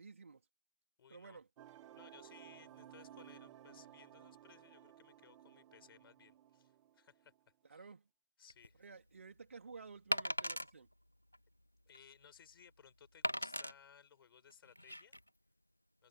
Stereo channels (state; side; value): inverted; both; correlation -0.92